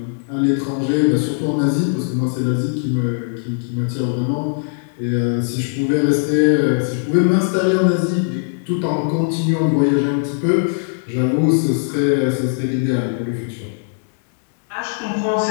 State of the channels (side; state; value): right; silent; digital silence